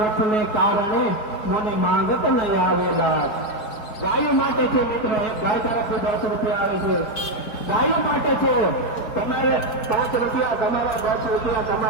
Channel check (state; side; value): late; right; 4.7 ms